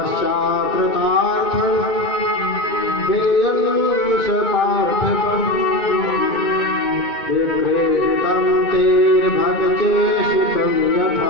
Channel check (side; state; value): right; late; 2.2 ms